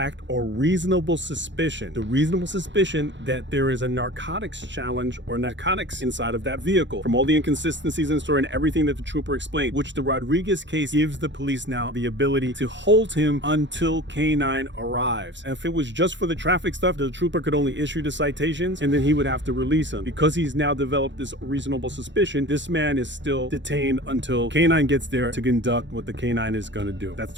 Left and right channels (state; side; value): late; left; 0.53 ms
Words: or reasonable suspicion, that there is a narcotics challenge or narcotics inside of that vehicle. From all the inconsistencies in the story and everything that the trooper explained, which the Rodriguez case gives the police now the ability to hold him until K9 arrives. And if it was just for the traffic stuff, the trooper could only issue the citations and then he would have to release him. Because he's now developed this reasonable suspicion, this man is still detained until K9 gets there to conduct what the K9 is going to do. That's